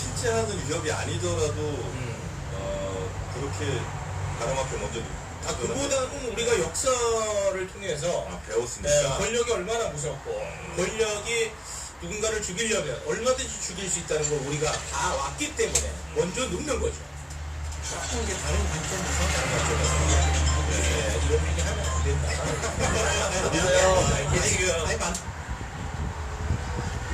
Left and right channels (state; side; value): identical; both; correlation 1.00